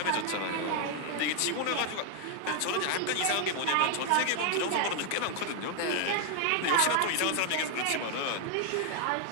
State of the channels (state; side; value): different; both; correlation 0.00